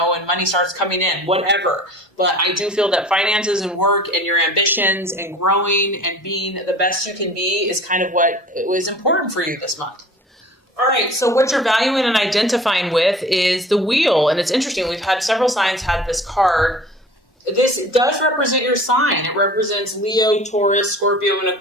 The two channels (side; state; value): both; normal; correlation 0.44